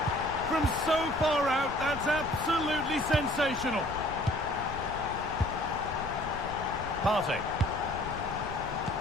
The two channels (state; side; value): noise; left; rumble, 12 dB below the sound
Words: From so far out, that's absolutely sensational. Partey.